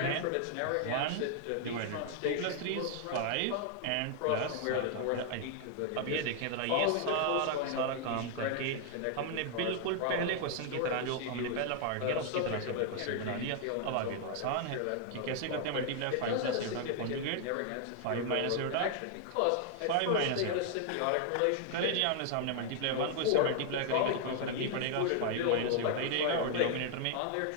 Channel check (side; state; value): both; different; correlation 0.00